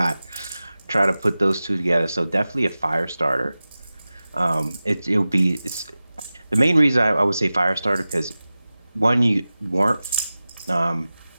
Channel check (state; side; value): inverted; both; correlation -0.96